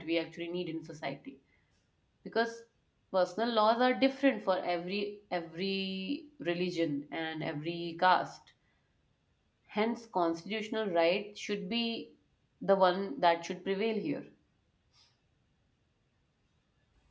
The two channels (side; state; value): both; identical; correlation 1.00